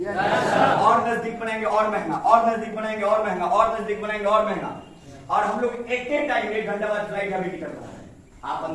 और नजदीक बनाएंगे और महंगा, और नजदीक बनाएंगे और महंगा, और नजदीक बनाएंगे और महंगा। और हम लोग एक टाइम 1 घंटा बाद फ्लाइट का भी टिकट बना रहे हैं। आप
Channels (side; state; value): both; identical; correlation 1.00